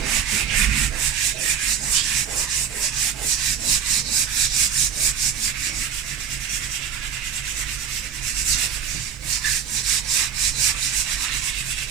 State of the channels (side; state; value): left; quieter; 7.9 dB